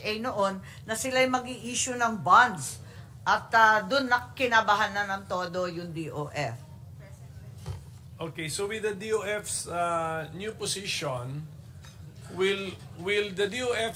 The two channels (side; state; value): both; identical; correlation 1.00